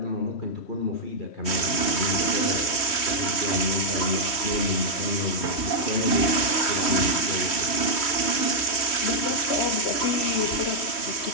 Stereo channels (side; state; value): right; late; 3.1 ms